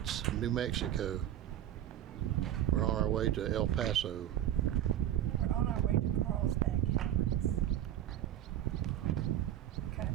New Mexico. We're on our way to El Paso. We're on our way to Carlsbad Caverns.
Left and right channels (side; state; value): left; quieter; 11.1 dB